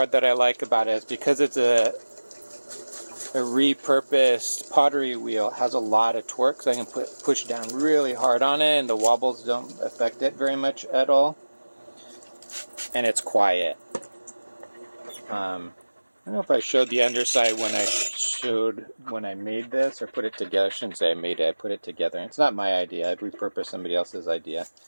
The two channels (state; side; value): inverted; both; correlation -1.00